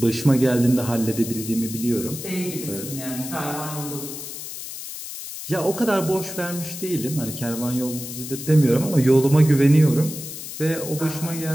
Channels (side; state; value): left; noise; hiss, 9 dB below the sound